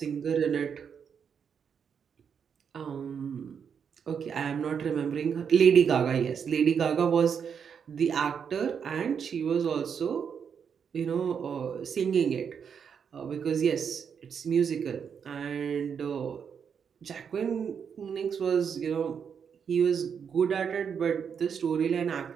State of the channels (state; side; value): quieter; left; 7.1 dB